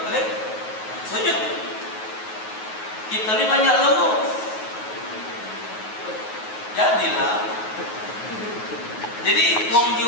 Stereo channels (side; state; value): right; late; 9.4 ms